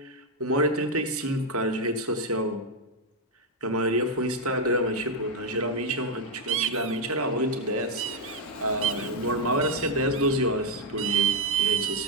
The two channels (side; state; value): both; normal; correlation 0.02